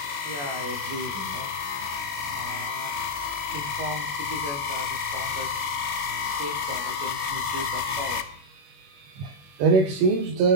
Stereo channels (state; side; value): late; left; 21 ms